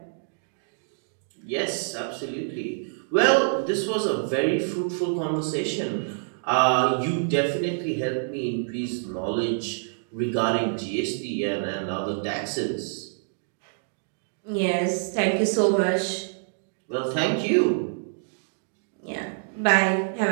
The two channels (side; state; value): left; silent; digital silence